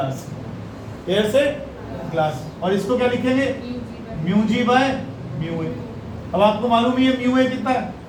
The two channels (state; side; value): identical; both; correlation 1.00